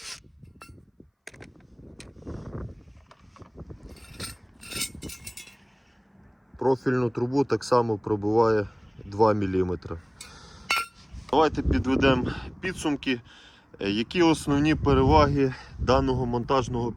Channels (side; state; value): both; identical; correlation 1.00